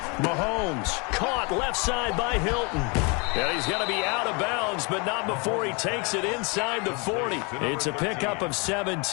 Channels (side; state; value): right; quieter; 31.4 dB